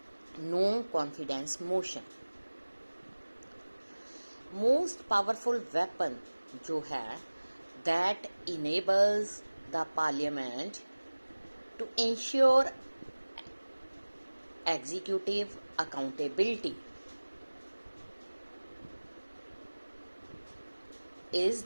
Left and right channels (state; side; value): inverted; both; correlation -1.00